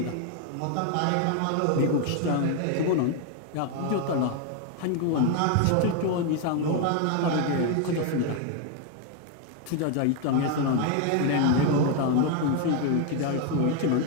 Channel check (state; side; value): different; both; correlation 0.01